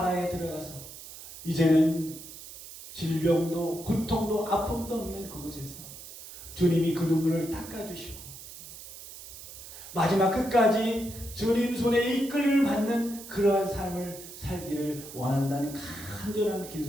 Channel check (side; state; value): right; noise; hiss, 14 dB below the sound